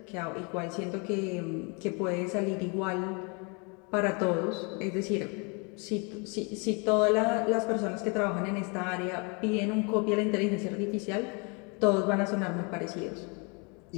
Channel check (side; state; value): right; quieter; 32.5 dB